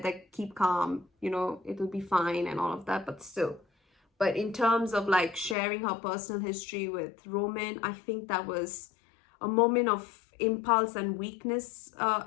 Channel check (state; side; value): drops out; right; at 5.6 s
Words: that keep calm, it'll be fine and all of that, but still. But in terms of sharing her personal history with Roman, I think that was a moment of impulse and weakness.